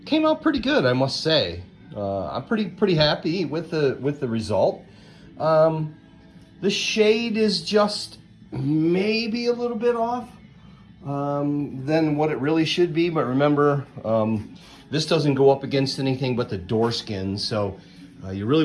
came out pretty good, I must say. I'm pretty happy with the result. The shade is just maybe a little bit off than what it really should be, but remember, this doesn't go up against anything but the door skin, so you really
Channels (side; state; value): both; identical; correlation 1.00